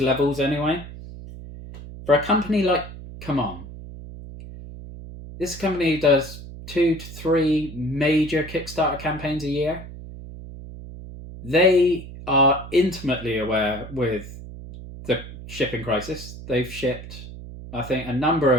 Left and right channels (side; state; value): right; noise; hum, 13 dB below the sound